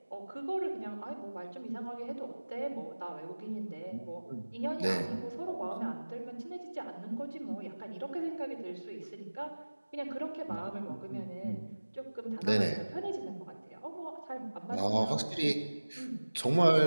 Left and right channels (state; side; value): inverted; both; correlation -1.00